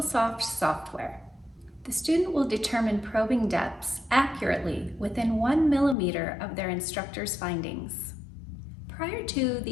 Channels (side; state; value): right; drops out; at 6.0 s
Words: software. The student will determine probing depths accurately within 1 millimeter of their instructor's findings. Prior to